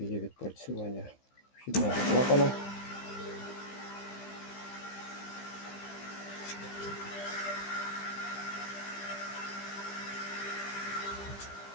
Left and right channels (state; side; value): late; right; 15 ms